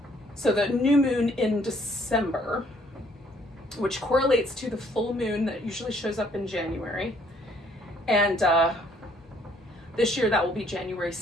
So the new moon in December, which correlates to the full moon that usually shows up in January. And this year that will be January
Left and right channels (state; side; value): normal; both; correlation 0.64